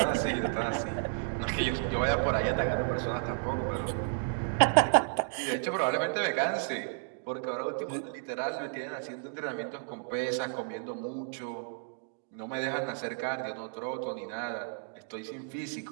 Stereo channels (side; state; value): left; silent; digital silence